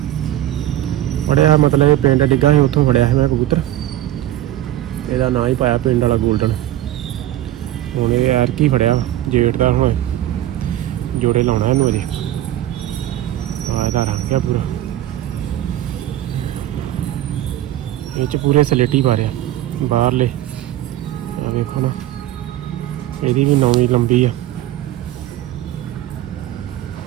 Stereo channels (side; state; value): left; quieter; 13.6 dB